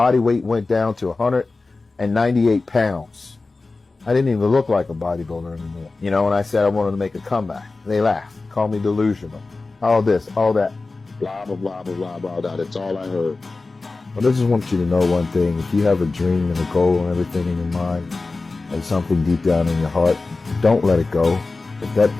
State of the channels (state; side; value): quieter; right; 3.6 dB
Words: weight went down to 198 pounds. I didn't even look like a bodybuilder anymore. You know, when I said I wanted to make a comeback, they laughed, called me delusional. All this, all that, blah, blah, blah, blah, blah, blah, blah. That's all I heard. But I just want you to know one thing. If you have a dream and a goal and everything in your mind and something deep down in your heart, don't let it go. If that